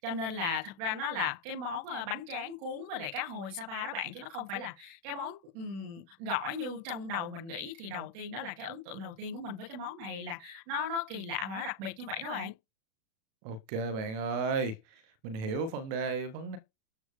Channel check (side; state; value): left; late; 36 ms